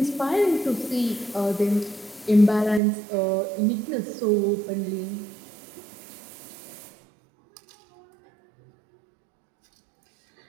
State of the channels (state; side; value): drops out; left; at 2.8 s